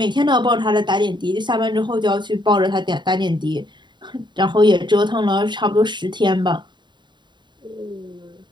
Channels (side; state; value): left; late; 0.22 ms